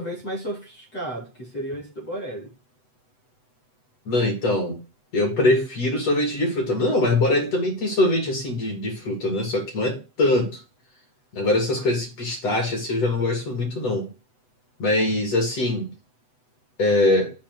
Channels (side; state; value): right; late; 8.0 ms